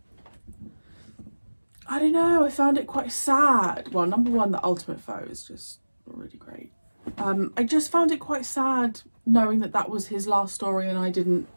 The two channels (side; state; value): both; inverted; correlation -1.00